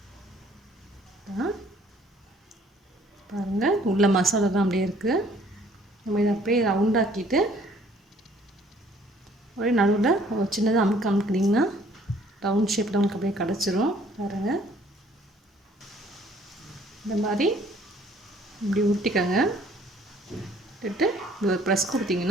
பாருங்கள், உள்ள மசாலா தான் அப்படியே இருக்குது. நம்ம இதை அப்படியே ரவுண்டாக்கிட்டு ஒரே நடுவில் சின்னதாக அமுக்கினீங்கன்னா ரவுண்ட் ஷேப்பில் நமக்கு அப்படியே கிடச்சிரும். பாருங்கள், இந்த மாதிரி இப்படி உருட்டிக்கங்க. விட்டு இப்படி ஒரு ப்ரெஸ்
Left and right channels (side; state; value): both; normal; correlation 0.59